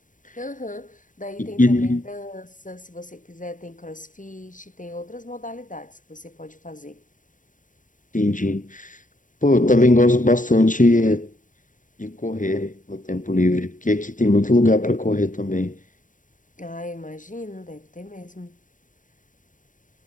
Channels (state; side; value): late; right; 0.38 ms